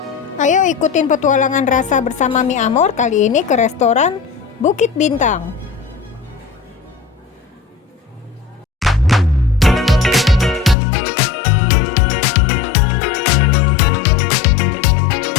Ayo ikutin petualangan rasa bersama Mi Amor kali ini ke restoran Bukit Bintang.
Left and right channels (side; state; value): right; drops out; at 10.8 s